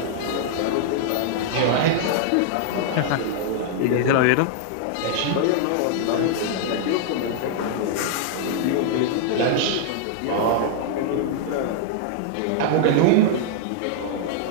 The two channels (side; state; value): both; different; correlation -0.01